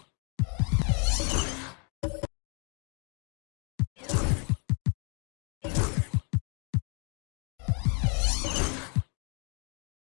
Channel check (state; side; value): quieter; right; 37.1 dB